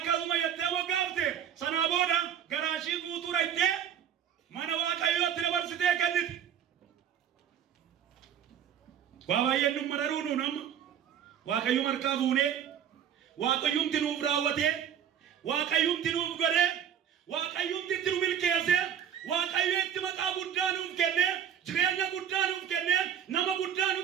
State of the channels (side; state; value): left; quieter; 9.0 dB